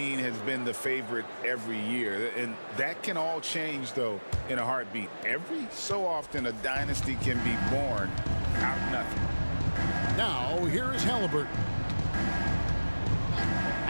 has been the favorite every year, and that can all change, though, in a heartbeat. Every so often, a dynasty can be born out of nothing. Now, here is Halliburton.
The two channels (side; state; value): both; inverted; correlation -1.00